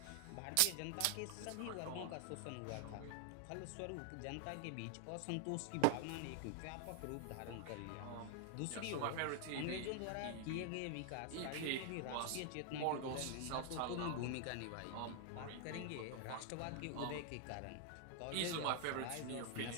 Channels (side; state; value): both; different; correlation 0.00